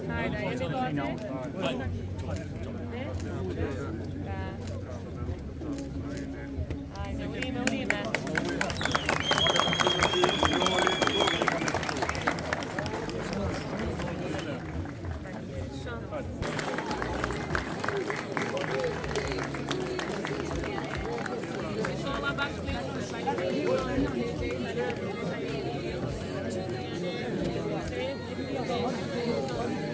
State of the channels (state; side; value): identical; both; correlation 1.00